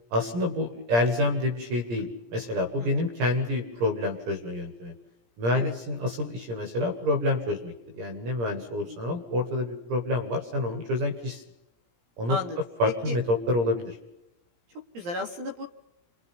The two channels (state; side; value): late; left; 17 ms